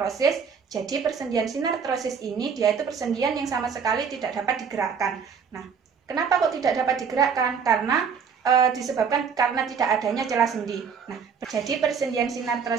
Jadi persendian sinartrosis ini dia itu persendian yang sama sekali tidak dapat digerakkan. Nah, kenapa kok tidak dapat digerakkan? Karena disebabkan karena tidak adanya celah sendi. Nah, jadi persendian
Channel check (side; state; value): left; quieter; 6.3 dB